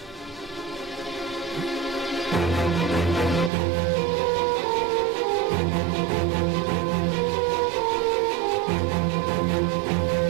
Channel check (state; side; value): drops out; left; at 3.5 s